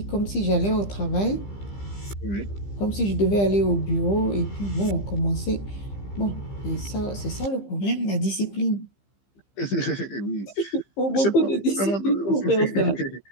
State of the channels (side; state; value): right; late; 15 ms